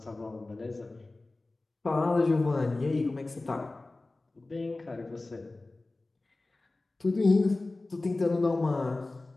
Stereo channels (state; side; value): quieter; right; 3.1 dB